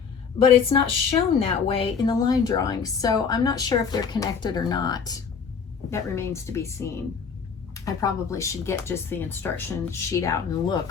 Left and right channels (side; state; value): right; quieter; 6.2 dB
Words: but it's not shown that way in the line drawings, so I'm not sure if they're connected or not. That remains to be seen. I probably should get just the instruction sheet out and